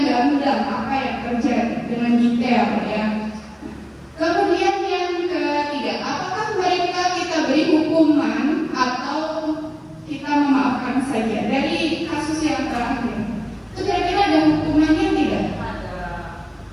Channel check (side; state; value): both; identical; correlation 1.00